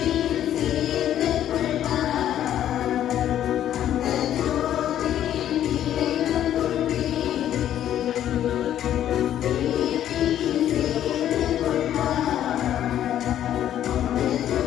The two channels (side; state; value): right; quieter; 11.2 dB